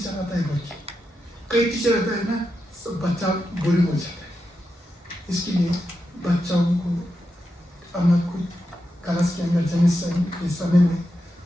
आता है बोल के। कई टीचर रहता है ना, सब बच्चा बोरिंग हो जाता है। इसके लिए बच्चों को अपना खुद क्लास के अंदर जाने के समय में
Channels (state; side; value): normal; both; correlation 0.87